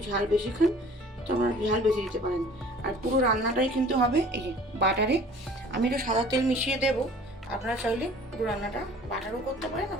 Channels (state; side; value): normal; both; correlation 0.49